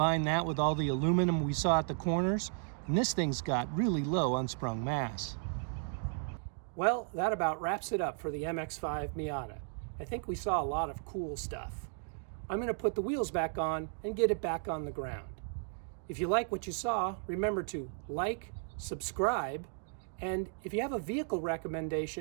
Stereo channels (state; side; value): silent; left; 55 dB below the other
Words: that with all the aluminum we saw at the corners, and this thing's got really low unsprung mass. Well, that about wraps it up for the MX-5 Miata. I think we saw a lot of cool stuff. I'm going to put the wheels back on and get it back on the ground. If you like what you saw, remember to like, subscribe, and if you have a vehicle